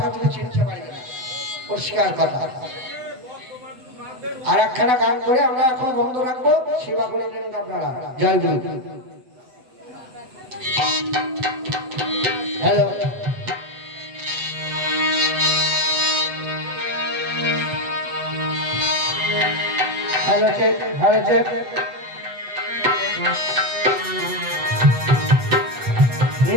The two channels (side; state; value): left; late; 8.0 ms